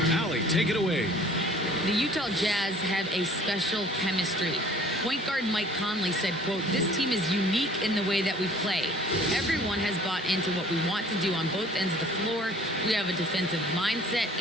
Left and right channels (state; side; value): normal; both; correlation 0.51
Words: Allie, take it away. The Utah Jazz have a special chemistry. Point guard Mike Conley said, quote, "This team is unique in the way that we play. Everyone has bought into what we want to do on both ends of the floor. We have a defensive mindset